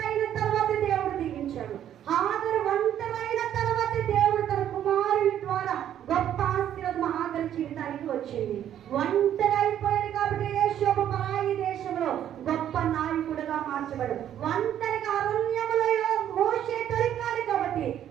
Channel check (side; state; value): left; quieter; 10.6 dB